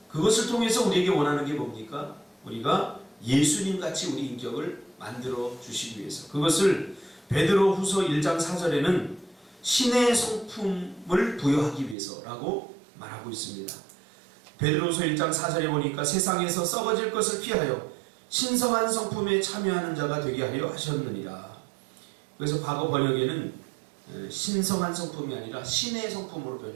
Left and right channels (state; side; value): drops out; left; at 12.0 s